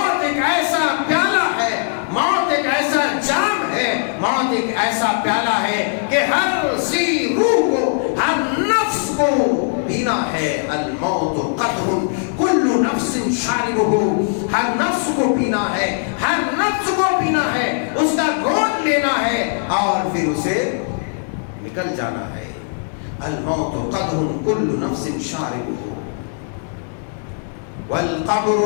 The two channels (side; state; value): right; silent; digital silence